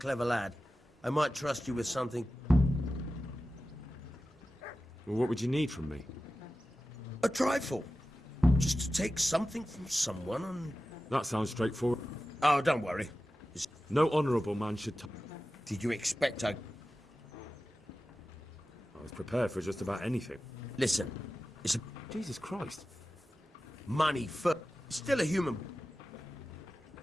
lad, I might trust you with something. Well, what would you need from me? A trifle. Just to take something from someone and... That sounds straightforward. Oh, don't worry. No honourable man should... Did you expect I was prepared for just about anything. Listen, it's a... Jesus Christ. Money for... Still a human...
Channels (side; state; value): both; normal; correlation 0.94